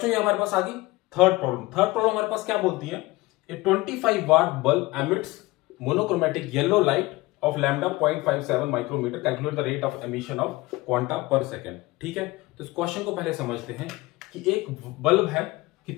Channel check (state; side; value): quieter; right; 20.7 dB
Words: ये हमारे पास आ गई थर्ड प्रॉब्लम। थर्ड प्रॉब्लम हमारे पास क्या बोलती है, a 25 watt bulb emits monochromatic yellow light of lambda 0.57 micrometer, calculate the rate of emission of quanta per second. ठीक है, तो इस क्वेश्चन को पहले समझते हैं कि एक बल्ब है,